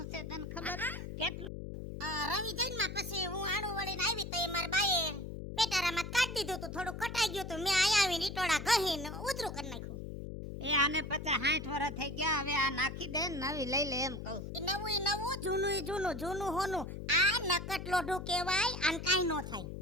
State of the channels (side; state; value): left; noise; hum, 8 dB below the sound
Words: છે તને ખબર? કેટલું? રવિ જન્મા પછી હું આણું વળીને આવી તો એ મારા બાએ પેટારામાં કાઢી દીધું તું. થોડું કટાઈ ગયું તું. મેં આયા આવીને ઈટોડા ગહીને ઉધરું કરી નાખ્યું. એ આને 50-60 વર્ષ થઈ ગયા. હવે આ નાખી દે ને નવી લઈ લે એમ કહું. ઈ નવું જૂનું ઈ જૂનું જૂનું હોનું. આ નકટ લોઢું કહેવાય. આને કાંઈ ન થાય.